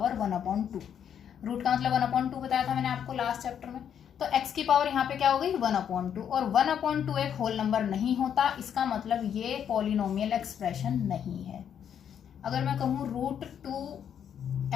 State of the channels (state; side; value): quieter; right; 8.7 dB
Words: 1/2। रूट का मतलब 1/2 बताया था मैंने आपको लास्ट चैप्टर में। तो x की पावर यहाँ पे क्या हो गई? 1/2, और 1/2 एक होल नंबर नहीं होता, इसका मतलब ये पॉलिनोमियल एक्सप्रेशन नहीं है। अगर मैं कहूँ